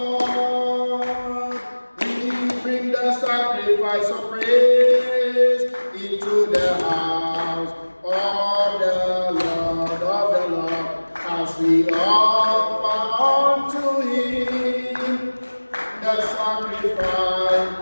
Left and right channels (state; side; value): inverted; both; correlation -1.00